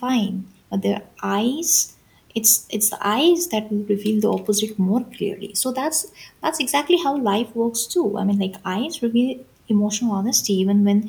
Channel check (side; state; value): both; identical; correlation 1.00